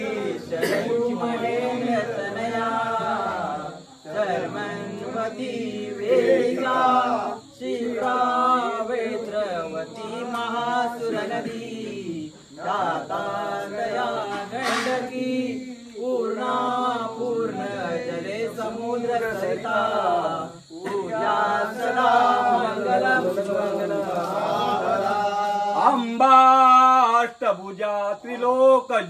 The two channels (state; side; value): identical; both; correlation 1.00